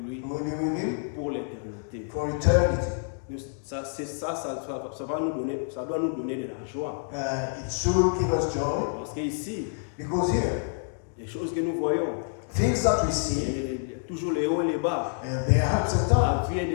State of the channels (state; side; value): silent; right; digital silence